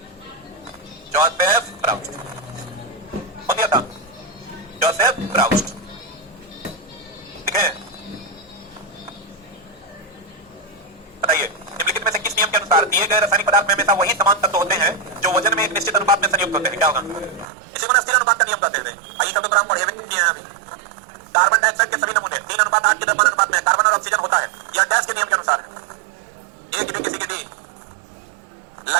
जोसेफ ब्राउस्ट। कौन दिया था? जोसेफ ब्राउस्ट। ठीक है, बताइए निम्नलिखित में से किस नियम के अनुसार दिए गए रासायनिक पदार्थ में हमेशा वही समान तत्व होते हैं जो वजन में एक निश्चित अनुपात में संयुक्त होते हैं? क्या होगा? इसी को स्थिर अनुपात का नियम कहते हैं। आइए सब तो हम पढ़े किए हैं अभी। कार्बन डाइऑक्साइड के सभी नमूने 3:8 के द्रव्यमान अनुपात में कार्बन और ऑक्सीजन होता है। यह गैस के नियम के अनुसार है। एक भी किसी के डी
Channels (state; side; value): drops out; left; at 17.4 s